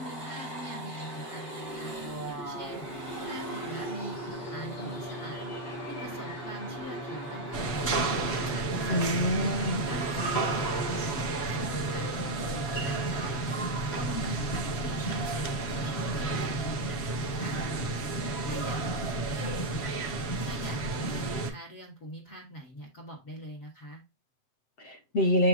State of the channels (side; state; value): right; late; 7.8 ms